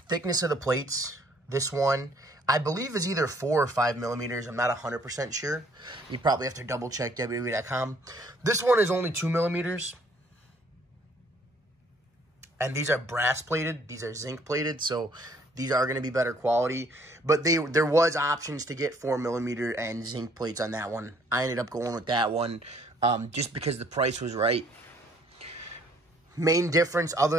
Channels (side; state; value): both; normal; correlation 0.62